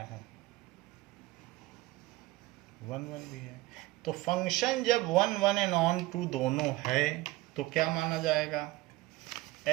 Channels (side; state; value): left; quieter; 19.2 dB